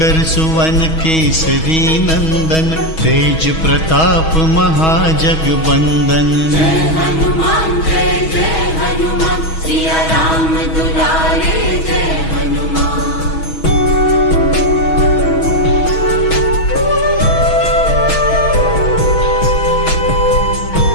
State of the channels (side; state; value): right; late; 6.2 ms